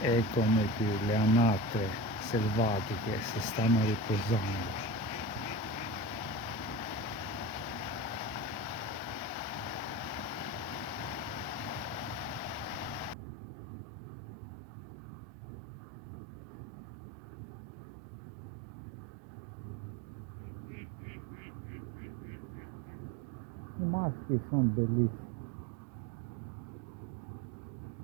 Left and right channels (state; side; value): drops out; left; at 13.2 s